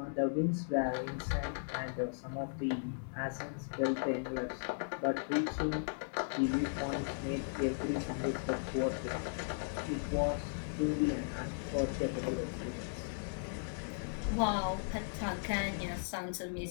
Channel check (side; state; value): right; silent; digital silence